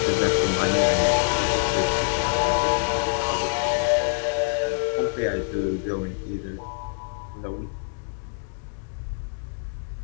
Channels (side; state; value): right; silent; digital silence